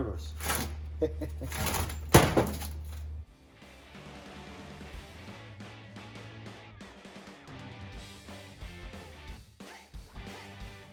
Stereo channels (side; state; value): both; identical; correlation 1.00